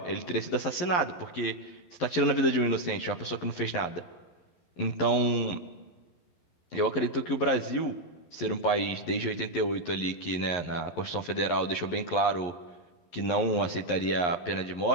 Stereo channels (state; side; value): late; right; 11 ms